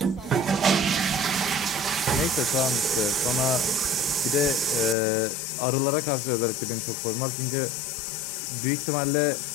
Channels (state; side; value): drops out; right; at 5.0 s